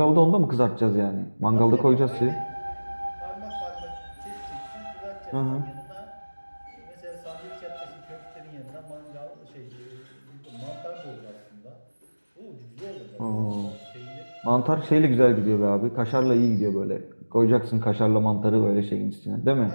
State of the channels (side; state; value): both; inverted; correlation -1.00